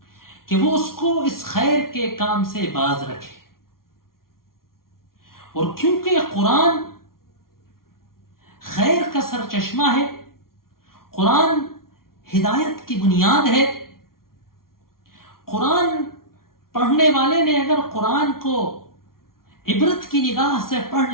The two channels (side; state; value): right; late; 0.93 ms